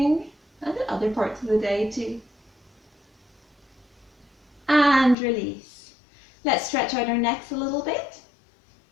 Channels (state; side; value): drops out; right; at 5.2 s